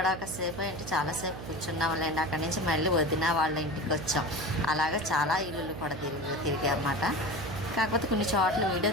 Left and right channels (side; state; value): right; noise; hum, 10 dB below the sound